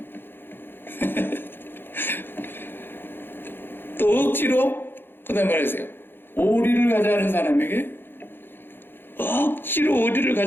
또 억지로 그 다음 말하세요. 오리를 가자는 사람에게 억지로 오리를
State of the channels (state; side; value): late; right; 0.10 ms